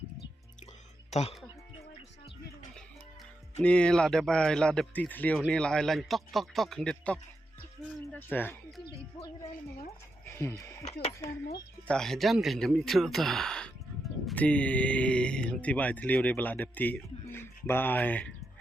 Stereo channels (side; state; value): both; normal; correlation 0.85